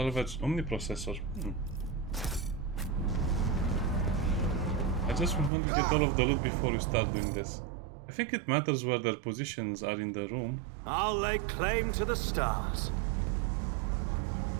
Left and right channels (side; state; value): left; drops out; at 5.5 s